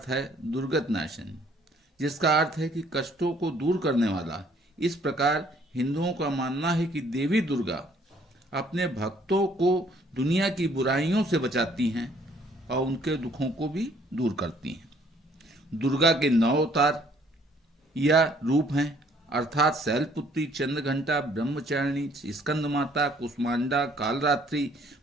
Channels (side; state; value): both; normal; correlation 0.61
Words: है दुर्गत नाशन, जिसका अर्थ है कि कष्टों को दूर करने वाला। इस प्रकार हिंदुओं का मानना है कि देवी दुर्गा अपने भक्तों को दुनिया की बुराइयों से बचाती हैं और उनके दुखों को भी दूर करती हैं। दुर्गा के 9 अवतार या रूप हैं, अर्थात शैलपुत्री, चंद्रघंटा, ब्रह्मचारिणी, स्कंद माता, कुष्मांडा, कालरात्रि,